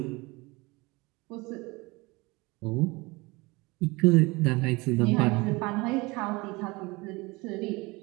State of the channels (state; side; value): quieter; left; 24.2 dB